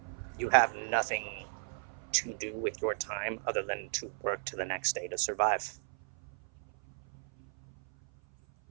You have nothing to do with your time other than to work to the next day to survive.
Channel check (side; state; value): left; silent; 55 dB below the other